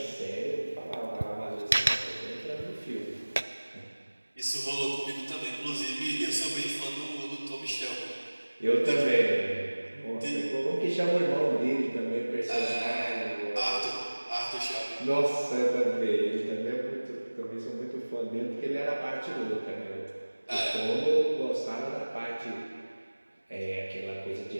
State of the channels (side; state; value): both; inverted; correlation -1.00